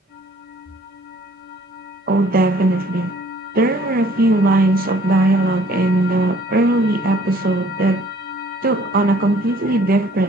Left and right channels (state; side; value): normal; both; correlation 0.57